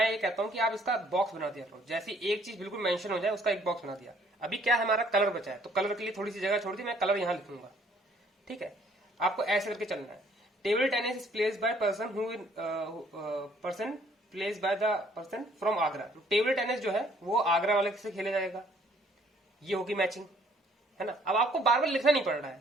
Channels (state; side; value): normal; both; correlation 0.62